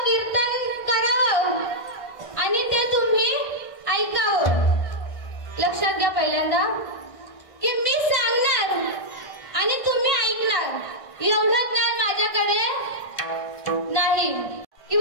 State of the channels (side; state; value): right; late; 1.6 ms